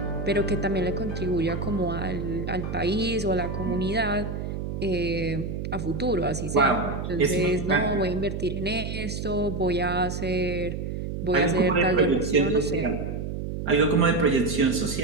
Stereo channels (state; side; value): noise; right; hum, 5 dB below the sound